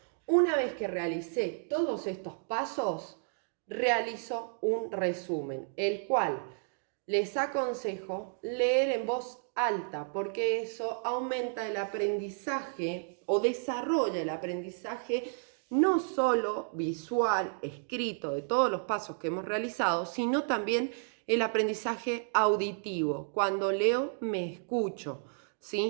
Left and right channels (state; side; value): silent; left; digital silence